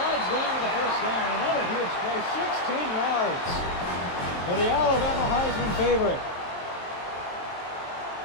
down to the first down. Another huge play, 16 yards. For the Alabama Heisman favorite.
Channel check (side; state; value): right; late; 23 ms